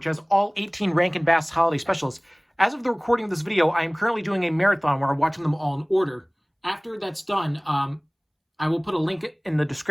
has all 18 Rankin Bass holiday specials. As of the recording of this video, I am currently doing a marathon where I'm watching them all in order. After that's done, I will put a link in the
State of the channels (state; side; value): identical; both; correlation 1.00